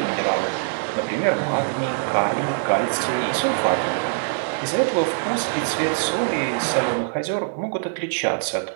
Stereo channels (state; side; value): silent; left; digital silence